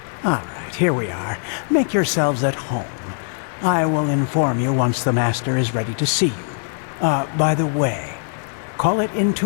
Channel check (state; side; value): silent; right; digital silence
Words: All right, here we are. Make yourselves at home. I will inform you once the Master is ready to see you. By the way, call it